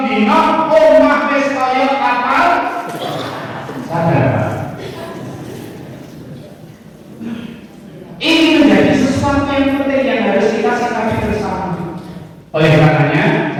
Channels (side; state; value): both; identical; correlation 1.00